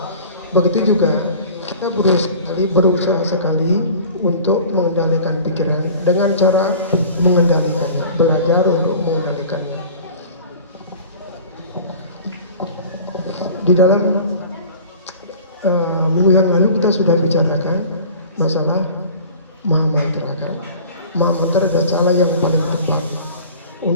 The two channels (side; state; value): both; inverted; correlation -0.43